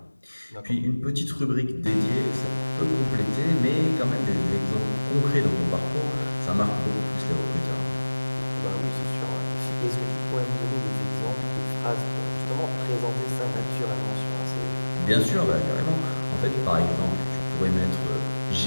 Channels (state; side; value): inverted; both; correlation -1.00